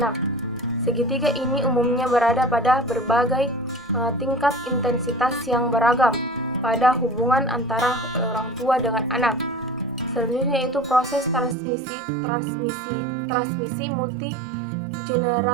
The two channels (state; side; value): drops out; left; at 11.6 s